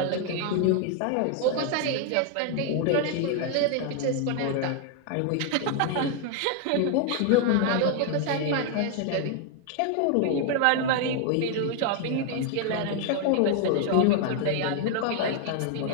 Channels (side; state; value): both; different; correlation 0.00